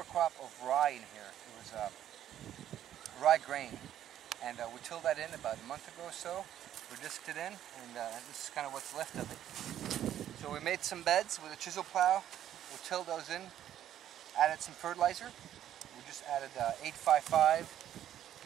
crop of rye in here. It was rye grain, and we tilled that in about a month ago or so. We disked it in, and this is kind of what's left of it. So we made some beds with a chisel plow. We tilled those in, added some fertilizer. We just added 855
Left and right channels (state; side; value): quieter; left; 11.2 dB